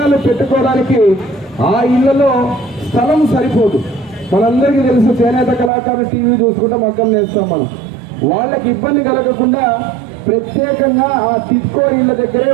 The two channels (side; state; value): left; drops out; at 5.7 s